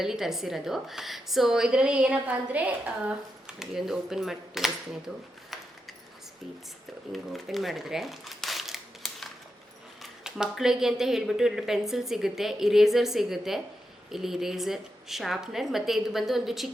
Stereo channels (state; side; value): normal; both; correlation 0.86